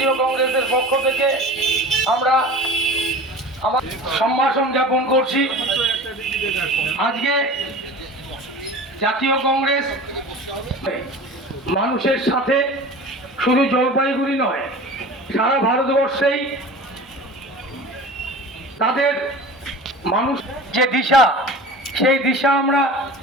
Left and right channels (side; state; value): both; normal; correlation 0.37